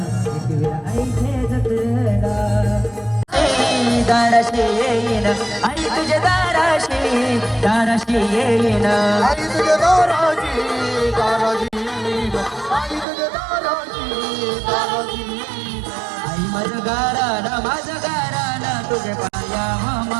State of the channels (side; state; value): left; drops out; at 13.1 s